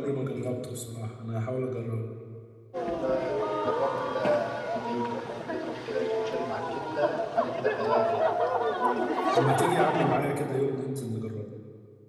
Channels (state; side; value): identical; both; correlation 1.00